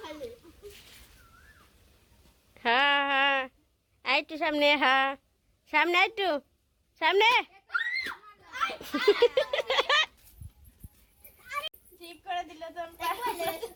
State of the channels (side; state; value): both; identical; correlation 1.00